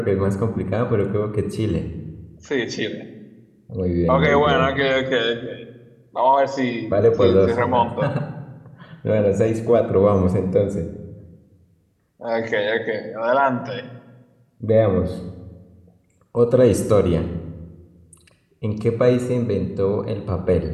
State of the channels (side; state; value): both; identical; correlation 1.00